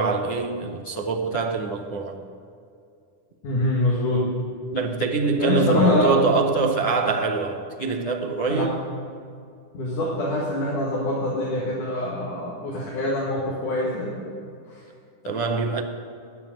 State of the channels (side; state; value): right; late; 10 ms